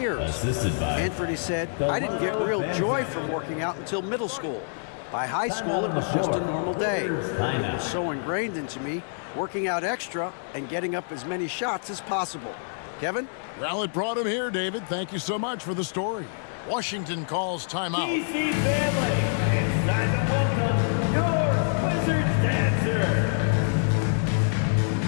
Anthony said, "I didn't get real joy from working out until middle school. By high school, it was just a normal day. It was so ingrained into me working out extra and getting up as many shots as possible. Kevin? Well, it brought him here, David. Thank you so much for the story. Washington calls timeout. DC family, it's time to welcome your Wizards dancer.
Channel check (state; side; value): silent; right; 61 dB below the other